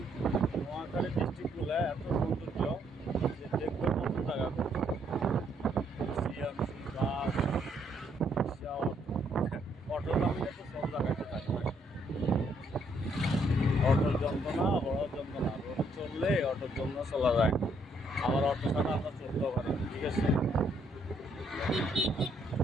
নোয়াখালী ডিস্ট্রিক্টগুলো এত সৌন্দর্য যে দেখবে কত জায়গা সিএমসি বাস অটো নামলে তো সব জায়গাতে থাকে। অটোর যন্ত্রণা বড় যন্ত্রণা, রোডে চললে অটোর জন্য চলা যায়, আবার অটো ছাড়া আমরা চলতেও পারি। ঠিক আছে,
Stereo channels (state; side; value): normal; both; correlation 0.71